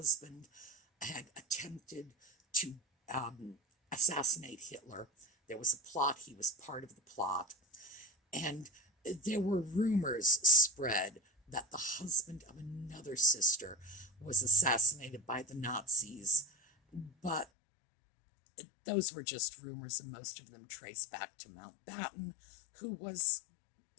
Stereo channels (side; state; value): right; drops out; at 17.4 s